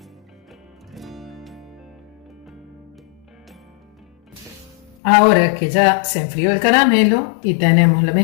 Ahora que ya se enfrió el caramelo y tenemos la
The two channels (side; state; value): right; drops out; at 5.0 s